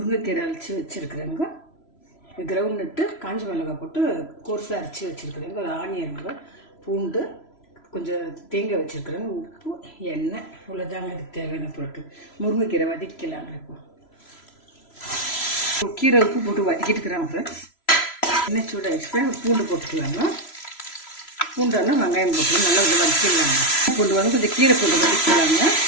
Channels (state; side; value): late; right; 3.0 ms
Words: அரைச்சி வச்சுருக்குறேங்க. கிரவுண்ட் நட்டு காஞ்ச மிளகாய் போட்டு கோர்ஸாக அரைச்சி வச்சுருக்குறேங்க. ஒரு ஆனியனுங்க, பூண்டு, கொஞ்சம் தேங்காய் வச்சுருக்குறேங்க, உப்பு, எண்ணெய், இவ்வளோதாங்க இதுக்கு தேவையான பொருட்கள். முருங்கைக்கீரை வதக்கலாங்க. இப்போ கீரை உப்பு போட்டு வதக்கிட்டு இருக்கிறாங்க ஃப்ரெண்ட்ஸ். எண்ணெய் சூடாகிடுச்சு, பூண்டு போட்டுக்கலாங்க. பூண்டானா வெங்காயம் போட்டு நல்லா கொஞ்சம் வதக்கிடலாங்க. பூண்டு வந்து கொஞ்சம் கீரை போட்டு வதக்கிக்கலாங்க.